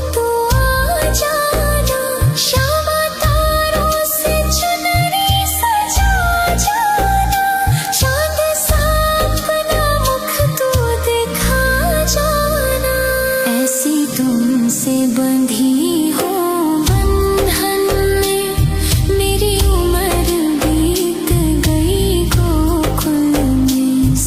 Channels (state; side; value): identical; both; correlation 1.00